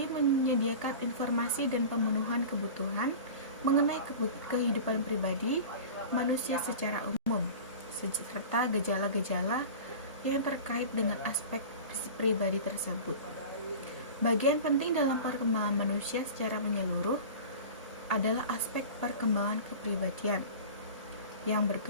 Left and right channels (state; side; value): inverted; both; correlation -0.35